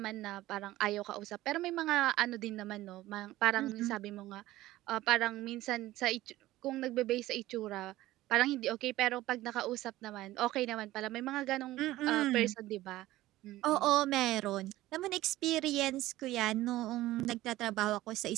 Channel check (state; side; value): quieter; left; 16.3 dB